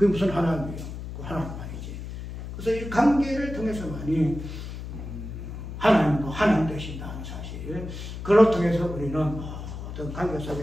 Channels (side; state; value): left; noise; hum, 9 dB below the sound